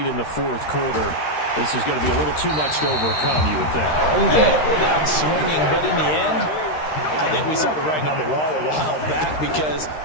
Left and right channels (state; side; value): late; right; 13 ms